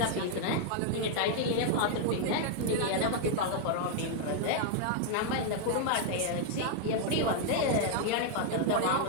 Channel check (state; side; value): different; both; correlation 0.00